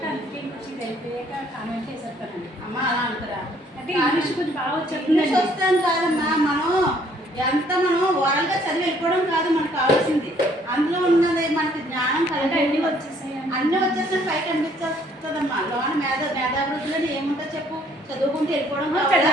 అందుకే ఇంకొచ్చి వెళ్ళిపోయాక కామెంట్ చేసేస్తానండి. అమ్మ అలా అంటారా? అంటే ఇంగ్లీష్ కొంచెం బాగా ఇంగ్లీష్ వస్తాను కాదమ్మా, మనం ఓరల్గా చదివి వెళ్ళిపోవడం కాదు మనకు కావాల్సింది. అందులో ఉన్నది మనకి జ్ఞానం కలిగి అన్నీ వచ్చేసాయి. అన్నీ వచ్చేసిన పైకి అనిపించేస్తుంది వస్తుందమ్మా. లోన మేధాభివృద్ధిలో ఏముంటుంది చెప్పు? చదువుకుంటూ వెళ్ళిపోవడం కావాలా?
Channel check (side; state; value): both; normal; correlation 0.63